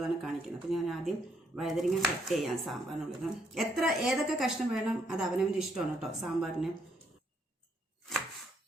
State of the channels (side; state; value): both; normal; correlation 0.72